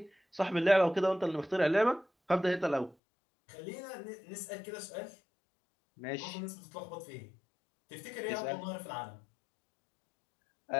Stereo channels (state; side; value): drops out; right; at 3.0 s